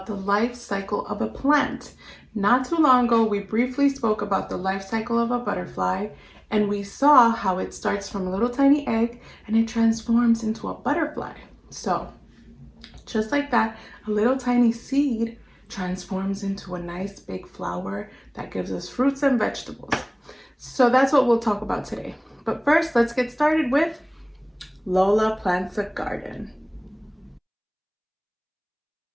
the life cycle of a plant. Not too long ago, we briefly spoke about the life cycle of a butterfly, and we saw how it starts from a little tiny egg and it transforms into a butterfly. So, just like that, a little tiny seed transforms into a nice big flower that gives us fruits and vegetables. So that's what we'll talk about today. But first, let's get started with Lola Plants a Garden.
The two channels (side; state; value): both; identical; correlation 1.00